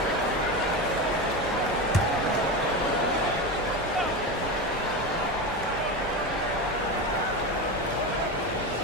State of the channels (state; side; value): normal; both; correlation 0.20